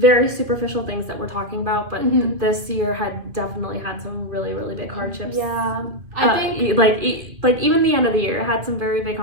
superficial things that we're talking about, but this year had definitely had some really, really big hardships. Yeah, I think like even the end of the year had some very big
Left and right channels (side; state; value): left; late; 2.5 ms